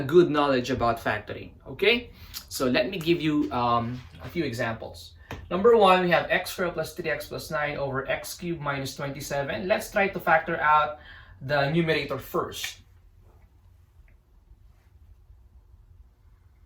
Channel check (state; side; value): identical; both; correlation 1.00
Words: good knowledge about factoring, okay? So let me give you a few examples. Number one, we have x squared plus 3x plus 9 over x cubed minus 27. Let's try to factor out the numerator first.